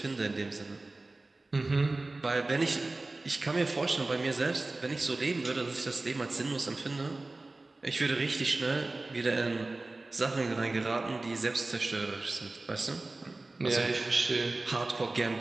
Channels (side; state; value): left; quieter; 3.1 dB